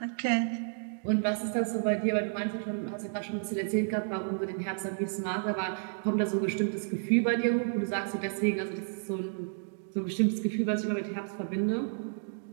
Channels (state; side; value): silent; left; digital silence